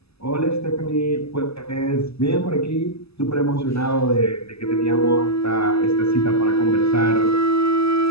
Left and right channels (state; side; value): late; right; 0.79 ms